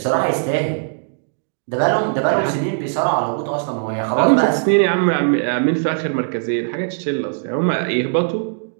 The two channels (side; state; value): left; silent; digital silence